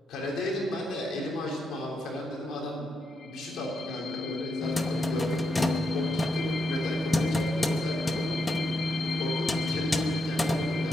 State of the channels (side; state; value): both; normal; correlation 0.83